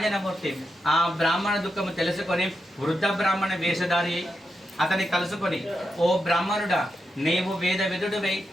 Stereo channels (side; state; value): both; normal; correlation 0.86